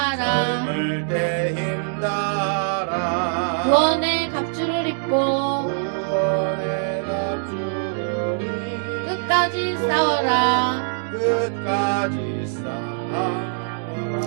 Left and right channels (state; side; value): silent; left; digital silence